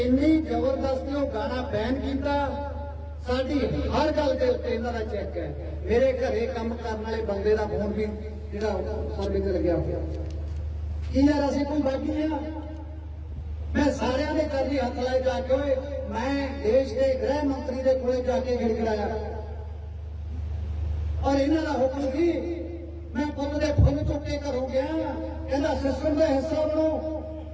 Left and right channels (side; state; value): both; identical; correlation 1.00